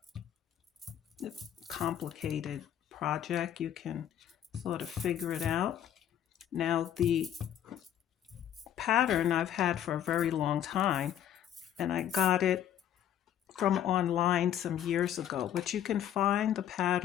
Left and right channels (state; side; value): quieter; right; 10.5 dB